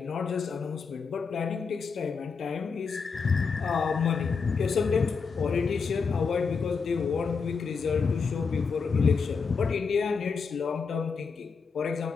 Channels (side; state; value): right; quieter; 5.3 dB